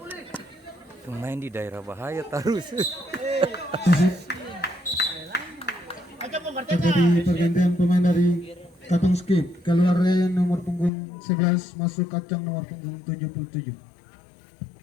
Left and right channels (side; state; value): right; drops out; at 10.9 s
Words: Main di daerah bahaya terus. Terjadi pergantian pemain dari Katong Skip, keluar nomor punggung 11 masuk kacang nomor punggung 77.